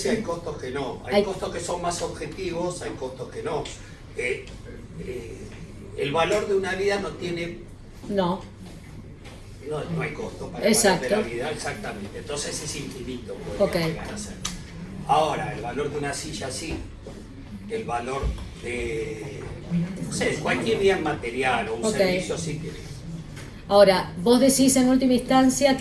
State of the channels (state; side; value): identical; both; correlation 1.00